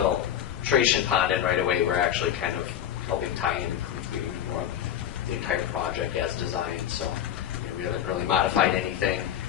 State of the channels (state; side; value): quieter; right; 10.2 dB